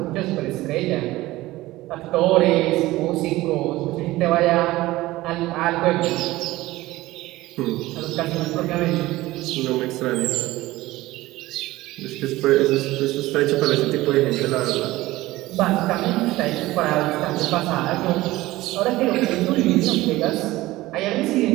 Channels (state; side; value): quieter; left; 18.0 dB